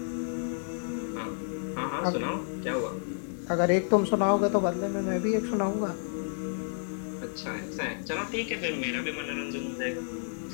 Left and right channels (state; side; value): silent; right; digital silence